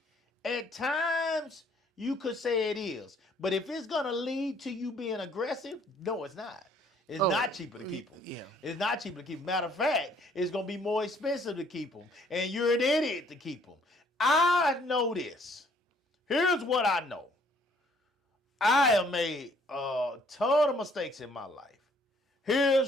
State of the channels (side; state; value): both; normal; correlation 0.62